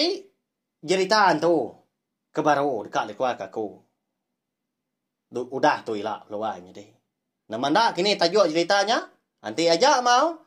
jeritaan tu kebaru dekat keluarga aku. Udah tu ilah lawannya deh. Nama ndak kini tajuk ceritanya. Nanti aja mau.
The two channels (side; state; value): both; identical; correlation 1.00